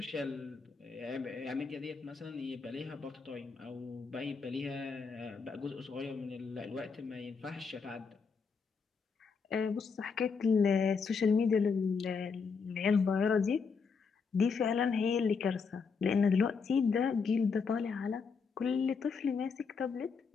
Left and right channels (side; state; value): right; quieter; 5.4 dB